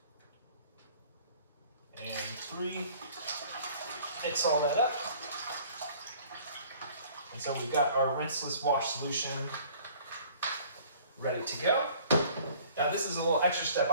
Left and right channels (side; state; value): both; inverted; correlation -0.52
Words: and 3. Mix all that up. And so we've got our rinseless wash solution ready to go. Now this is a little extra step